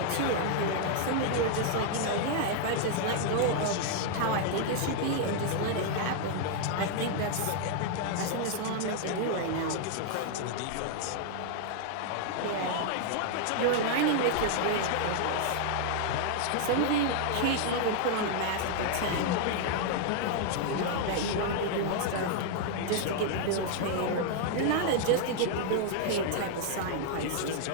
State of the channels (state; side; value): different; both; correlation 0.00